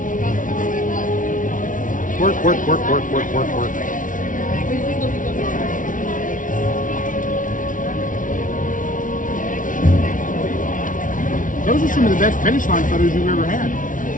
Work, work, work, work, work, work, work. Those are some of the best finish line photos you've ever had.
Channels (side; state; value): right; late; 0.38 ms